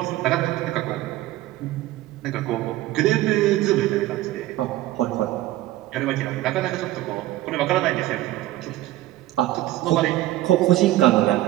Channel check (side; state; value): left; quieter; 15.7 dB